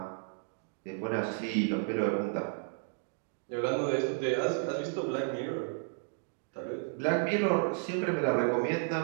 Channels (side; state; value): left; silent; 56 dB below the other